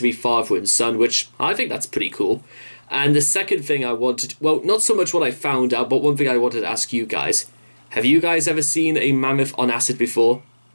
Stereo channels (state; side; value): inverted; both; correlation -1.00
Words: be father and son, which I think that's pretty cool. And the second thing I wanted, well, not so much what I found out, but one thing I wanted to ask you guys. Have you guys ever seen a mammoth on acid before?